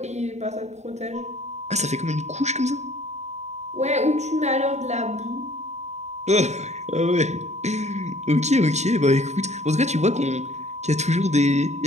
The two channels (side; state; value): left; late; 0.33 ms